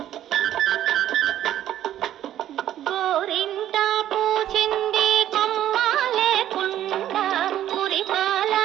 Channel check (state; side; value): quieter; left; 11.9 dB